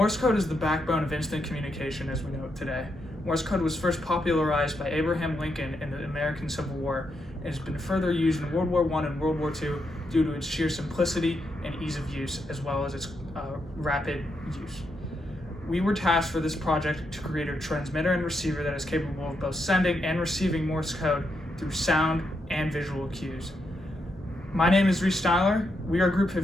code is the backbone of instant communication as we know it today. Morse code was first popularized by Abraham Lincoln in the American Civil War and has been further used in World War I and World War II due to its sheer simplicity and ease of use, as well as its rapid use. We were tasked for this project to create a transmitter and receiver that is capable of both sending and receiving Morse code through sound and visual cues. My name is Reese Styler. We are Group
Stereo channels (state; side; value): normal; both; correlation 0.81